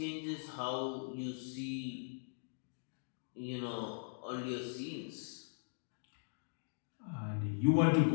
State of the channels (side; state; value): right; silent; digital silence